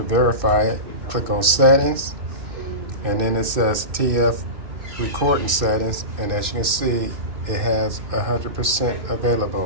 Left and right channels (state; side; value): late; left; 2.6 ms